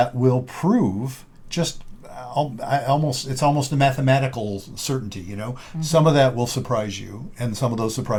will prove just it's almost a mathematical certainty, Mm-hmm. Some of that will surprise you, and some of those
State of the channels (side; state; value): both; identical; correlation 1.00